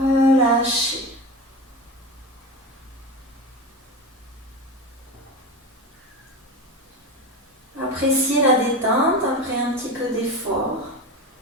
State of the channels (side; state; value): both; normal; correlation 0.24